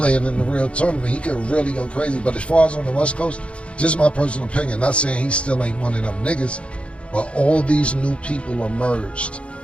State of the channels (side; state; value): right; late; 0.060 ms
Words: in the real tournament. He could really go crazy. But as far as on the West Coast, just my personal opinion, not saying he still ain't one of them niggas, but all these new people emerged.